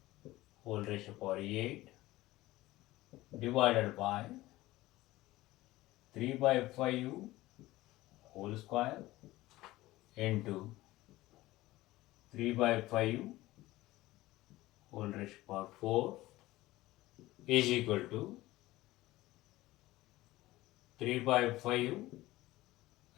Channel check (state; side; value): quieter; right; 17.8 dB